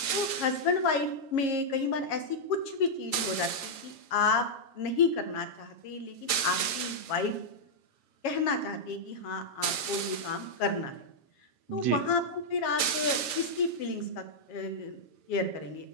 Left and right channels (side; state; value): right; late; 7.3 ms